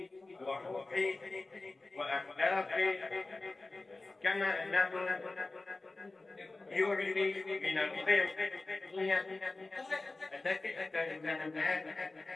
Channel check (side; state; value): right; quieter; 3.2 dB